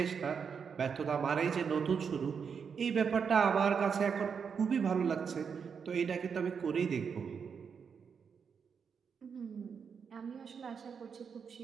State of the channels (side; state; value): left; quieter; 6.5 dB